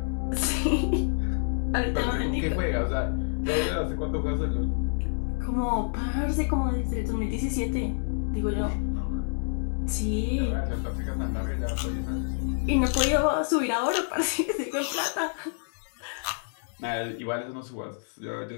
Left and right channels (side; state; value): right; silent; digital silence